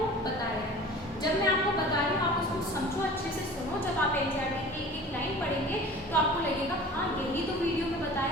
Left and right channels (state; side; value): normal; both; correlation 0.41